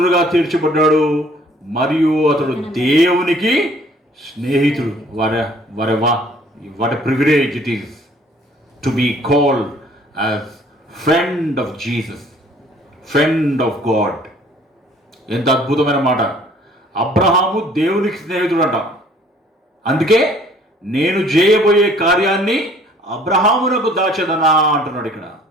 తీర్చబడ్డాడు మరియు అతడు దేవునికి స్నేహితుడు. What privilege it is to be called as friend of Jesus, friend of God. ఎంత అద్భుతమైన మాట. అబ్రహాము దేవునికి స్నేహితుడు అంట. అందుకే నేను చేయబోయే కార్యాన్ని అబ్రహామునకు దాచదనా అంటున్నాడు ఇక్కడ.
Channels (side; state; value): both; normal; correlation 0.57